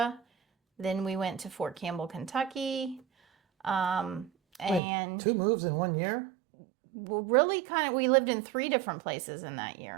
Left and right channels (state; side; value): drops out; left; at 4.8 s